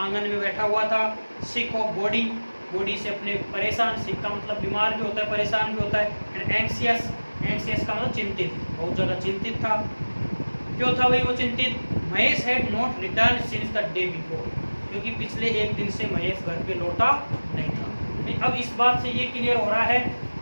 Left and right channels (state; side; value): inverted; both; correlation -1.00